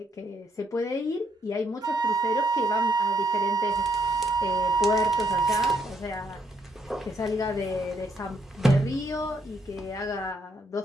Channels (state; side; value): normal; both; correlation 0.73